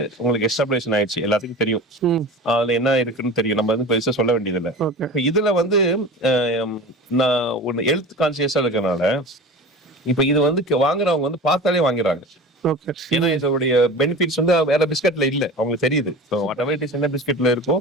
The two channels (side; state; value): both; normal; correlation 0.34